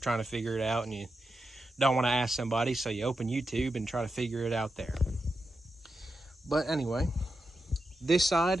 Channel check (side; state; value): both; normal; correlation 0.88